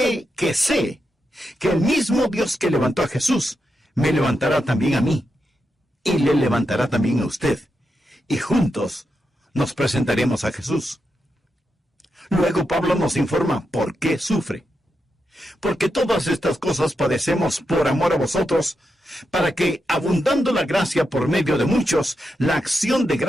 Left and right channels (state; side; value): normal; both; correlation 0.86